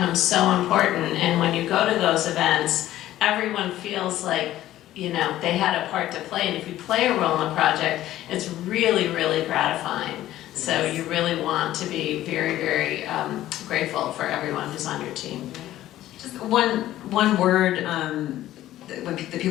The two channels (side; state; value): right; quieter; 14.0 dB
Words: so important. And when you go to those events, everyone feels like, you know, they had a part to play, and if you play a role in the project, it's really, really gratifying. So you really want to be very, very grateful for everyone who's on your team. Just one word that